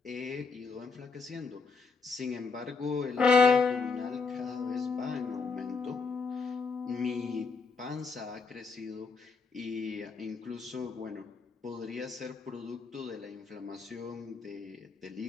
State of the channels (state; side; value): quieter; right; 4.6 dB